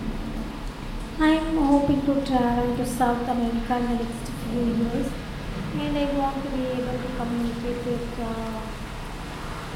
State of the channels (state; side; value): identical; both; correlation 1.00